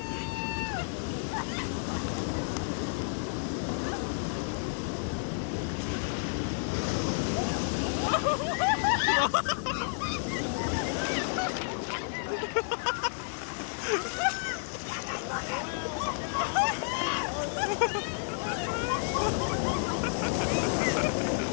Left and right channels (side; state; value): right; silent; digital silence